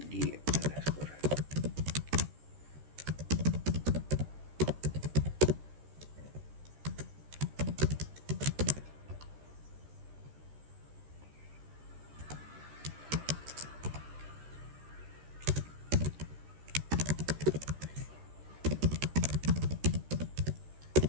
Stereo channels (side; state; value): left; late; 13 ms